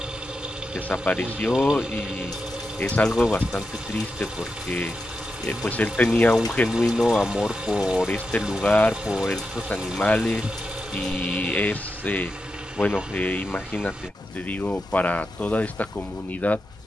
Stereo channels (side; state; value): both; normal; correlation 0.88